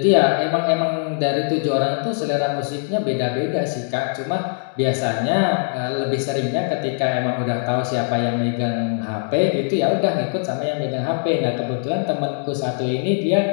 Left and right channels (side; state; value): right; silent; 62 dB below the other